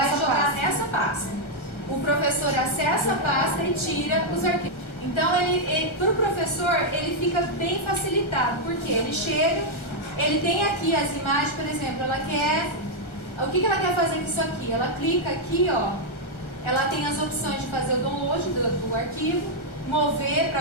nessa jogar pasta. nessa pasta. O professor acessa a pasta e tira os arquivos. Então, para o professor, ele fica bem facilitado, porque ele chega, ele tem aqui as imagens, por exemplo, ela quer... O que ela quer fazer com isso aqui? Ela clica aqui, ó, ela tem as opções de fazer o download do arquivo, mover para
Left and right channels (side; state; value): right; late; 1.4 ms